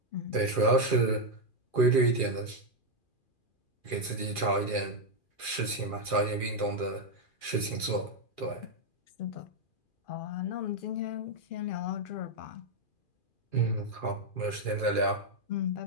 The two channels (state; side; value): late; right; 2.4 ms